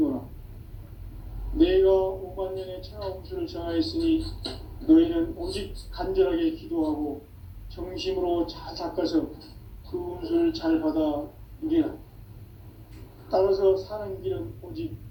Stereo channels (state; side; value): identical; both; correlation 1.00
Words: 내가 5만 년의 천하 운수를 정하였으니 너희는 오직 간절하게 기도하고 정심으로 잘 닦아서 그 운수를 잘 받아 누리라. 따라서 사는 길은 오직